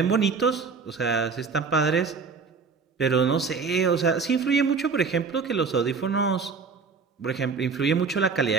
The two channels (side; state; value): left; quieter; 5.1 dB